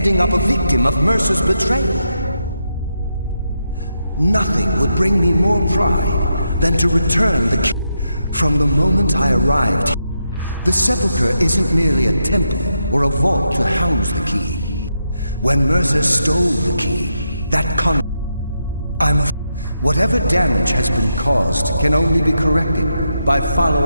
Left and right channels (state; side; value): inverted; both; correlation -0.84